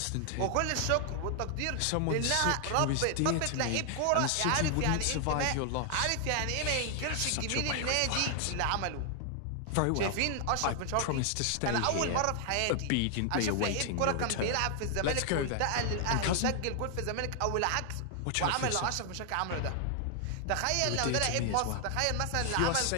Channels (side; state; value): both; different; correlation 0.00